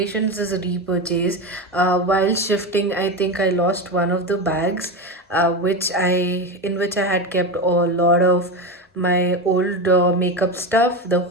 is a repurchase. While shifting, I think I lost one of the bags, in which I had kept a lot of my old makeup stuff. The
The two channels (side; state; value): both; normal; correlation 0.18